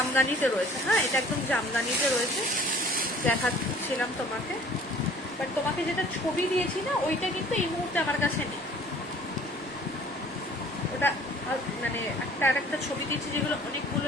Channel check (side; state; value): both; normal; correlation 0.52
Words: রয়েছে, হ্যাঁ এটা একদম জামদানিতে রয়েছে, দেখাচ্ছিলাম তোমাকে। বাট তোমাকে যেটা ছবি দিয়েছি না ওইটা কিন্তু এই মুহূর্তে আমার কাছে নেই, ওটা মানে একটা ছবি দিয়েছি যেগুলো অনেকগুলো,